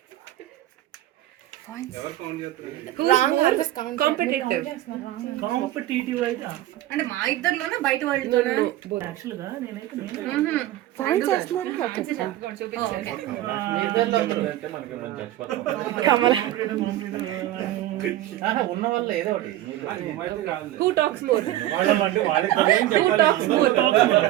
Wrong answers competitive. Competitive అయితే అంటే మా ఇద్దరిలోనే బయట వాళ్ళతోనే యాక్చువల్ గా నేనైతే ఉన్న వల్ల ఏదో ఒకటి Who talks more? Who talks more?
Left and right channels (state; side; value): quieter; left; 14.5 dB